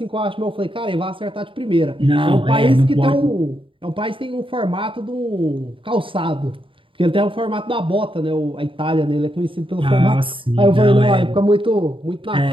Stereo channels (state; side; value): late; left; 0.25 ms